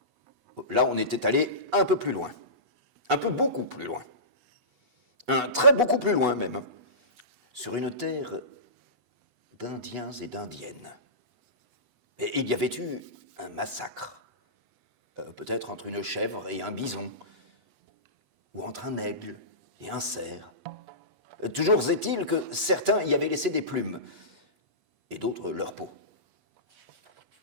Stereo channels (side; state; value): left; late; 8.1 ms